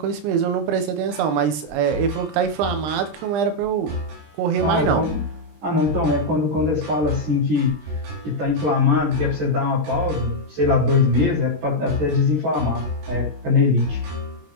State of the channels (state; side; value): late; left; 20 ms